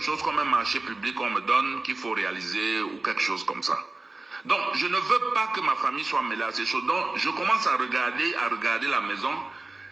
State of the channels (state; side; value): quieter; left; 3.3 dB